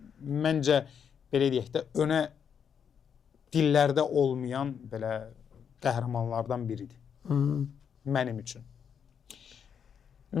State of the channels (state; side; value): quieter; right; 7.5 dB